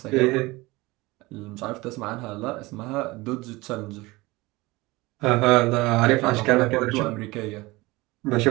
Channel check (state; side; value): quieter; left; 21.6 dB